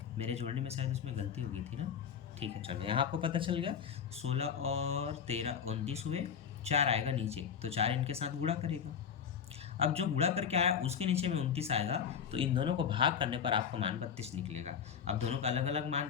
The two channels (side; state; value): right; quieter; 7.5 dB